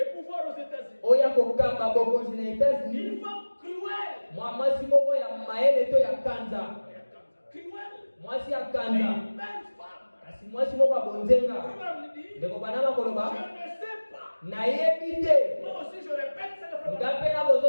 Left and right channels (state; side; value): inverted; both; correlation -1.00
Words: pouvoir aux États-Unis. Oyo akokamba bokonzi na Une États-Unis. femme cruelle. Mwasi moko ya mayele to ya kanza. Cruelle. Mwasi ya Une kanza. belle femme. Kasi mwasi moko ya bonzenga. Abraham dit, Ndeko bana makoloba. je ne sais pas nayebi te. Moi aussi, je répète, c'est le frère. Ngape na